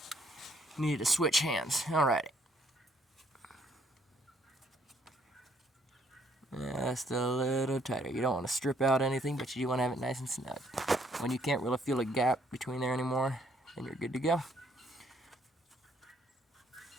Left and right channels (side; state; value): both; normal; correlation 0.66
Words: Need to switch hands. Alright. Just a little tighter. You don't want to strip out anything, but you do want to have it nice and snug. When you can't really feel a gap between there anymore, then you're good to go.